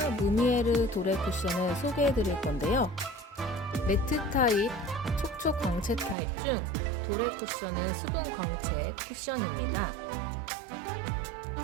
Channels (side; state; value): left; drops out; at 6.2 s